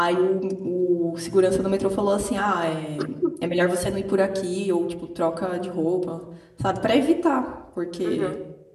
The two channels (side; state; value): both; identical; correlation 1.00